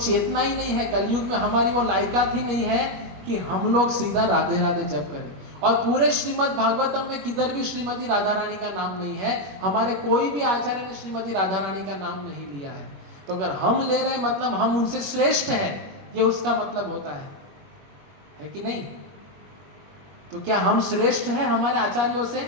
ही नहीं है, कलयुग में हमारी वो लायकात ही नहीं है कि हम लोग सीधा राधे राधे जप करें। और पूरे श्रीमद् भागवतम में किधर भी श्रीमती राधा रानी का नाम नहीं है। हमारे कोई भी आचार्य ने श्रीमती राधा रानी का नाम नहीं लिया है। तो अगर हम ले रहे हैं मतलब हम उनसे श्रेष्ठ हैं, ये उसका मतलब होता है कि नहीं? तो क्या हम श्रेष्ठ हैं हमारे आचार्यों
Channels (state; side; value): late; left; 21 ms